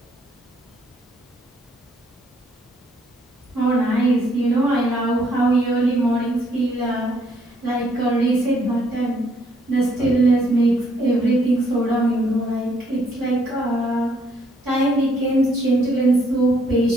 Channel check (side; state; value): both; normal; correlation 0.68